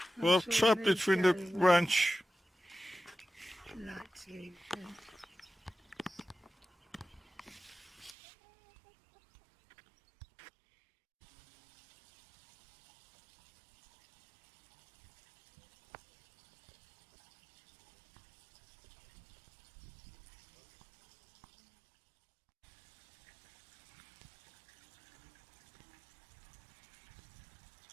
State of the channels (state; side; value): drops out; left; at 8.2 s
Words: Well, sure trapped they between the go well. branch. Like to,